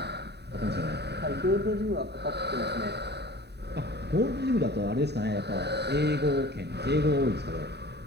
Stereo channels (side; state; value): left; late; 0.48 ms